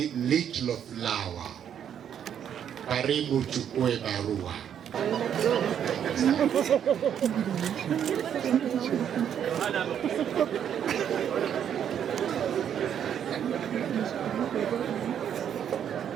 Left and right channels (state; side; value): quieter; left; 9.0 dB